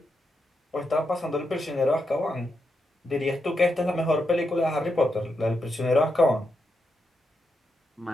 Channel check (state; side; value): normal; both; correlation 0.84